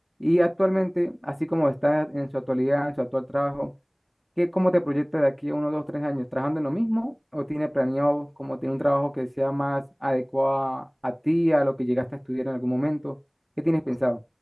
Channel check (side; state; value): both; identical; correlation 1.00